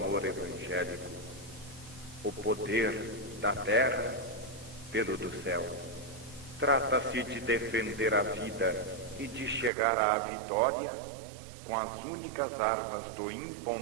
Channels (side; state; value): left; drops out; at 9.7 s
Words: evangélico, o poder da terra pelo do céu. Trata-se de defender a vida e de chegar à vitória com as únicas armas do